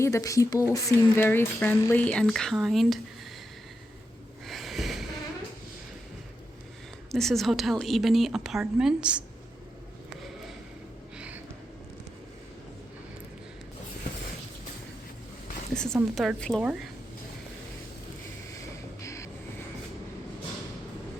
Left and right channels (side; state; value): both; normal; correlation 0.86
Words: The people seem very friendly and kind. This is Hotel Ebony Apartments. This is on the 3rd floor.